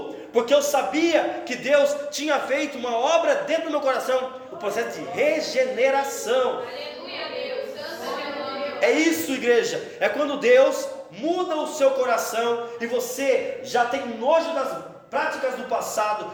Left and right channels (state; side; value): identical; both; correlation 1.00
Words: porque eu sabia que Deus tinha feito uma obra dentro do meu coração, o processo de regeneração. Aleluia, Deus. Santo é o nome. É isso, igreja, é quando Deus muda o seu coração e você já tem nojo das práticas do